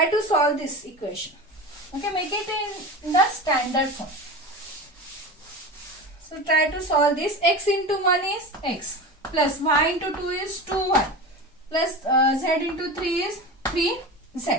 to solve this equation. Okay, make it in the standard form. So try to solve this. X into 1 is x plus y into 2 is 2y plus z into 3 is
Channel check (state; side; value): normal; both; correlation 0.28